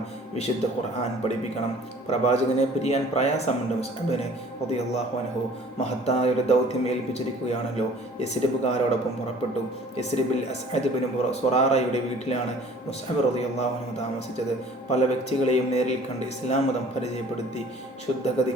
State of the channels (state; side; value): normal; both; correlation 0.50